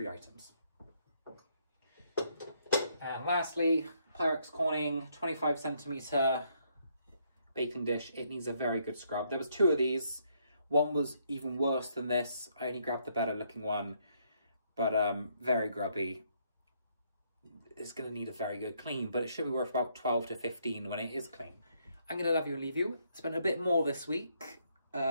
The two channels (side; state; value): both; inverted; correlation -0.72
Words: items. And lastly, Pyrex Corning 25cm baking dish. It needs a very good scrub. There was 2 of these. One was even worse than this. I only grabbed the better looking one, but very grubby. It's going to need a very good clean, but it should be worth about 12 to 15 when it is clean. I'm going to love you and leave you. Spent a bit more this week